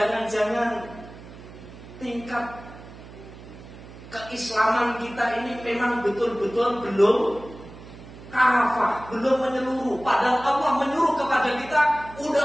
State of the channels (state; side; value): noise; right; hum, 17 dB below the sound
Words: tingkat keislaman kita ini memang betul-betul belum kafah, belum menyeluruh. Padahal Allah menyuruh kepada kita,